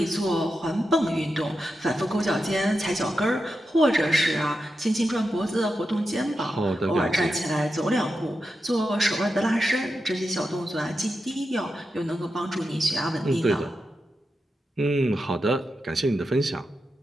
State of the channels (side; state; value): both; normal; correlation 0.89